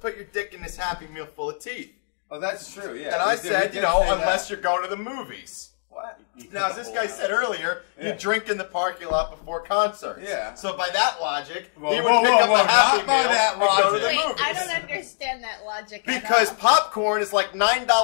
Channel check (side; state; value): right; silent; digital silence